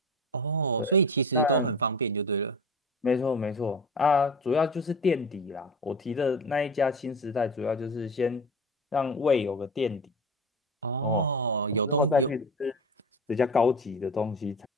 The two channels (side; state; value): both; normal; correlation 0.31